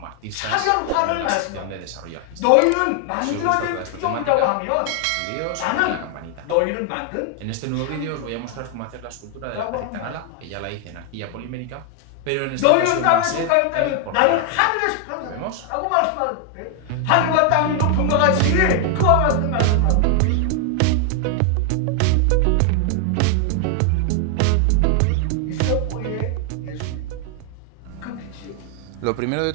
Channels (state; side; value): different; both; correlation 0.00